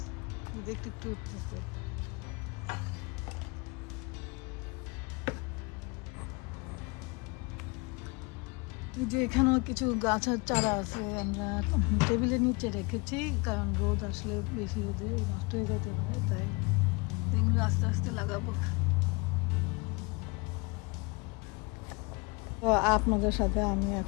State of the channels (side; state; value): right; quieter; 28.4 dB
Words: একটু একটু উঠতেছে। যে এখানেও কিছু গাছের চারা আছে, আমরা টেবিলের নিচে রেখেছি, কারণ রোদ আসলে বেশি রোদে নষ্ট হয়ে যেতে পারে, তাই এগুলো আস্তে আস্তে লাগাবো। তো আপনাদের সাথে আমি